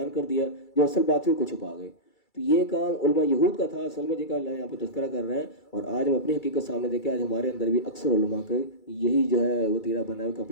کر دیا جو اصل بات تھی کو چھپا گئے۔ تو یہ کام علماء یہود کا تھا اصل میں، جن کا اللہ یہاں پہ تذکرہ کر رہے ہیں، اور آج ہم اپنی حقیقت سامنے دیکھیں، آج ہمارے اندر بھی اکثر علماء کا یہی جو ہے وہ تیرا بنا ہے کہ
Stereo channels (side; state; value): right; late; 2.3 ms